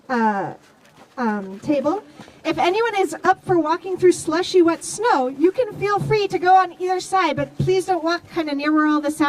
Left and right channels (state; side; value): identical; both; correlation 1.00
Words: table. If anyone is up for walking through slushy wet snow, you can feel free to go on either side, but please don't walk kind of near where all the